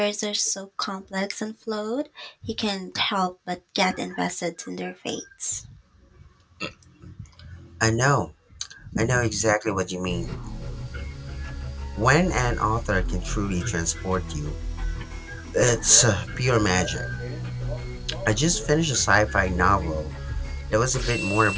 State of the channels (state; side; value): identical; both; correlation 1.00